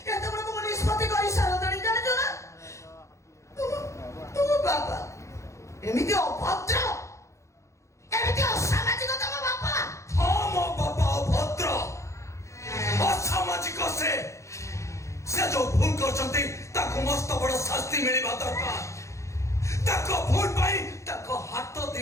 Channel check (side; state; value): right; late; 0.14 ms